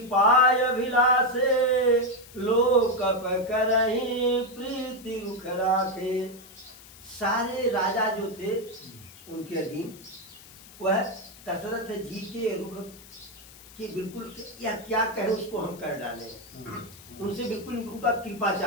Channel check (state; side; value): noise; left; hiss, 20 dB below the sound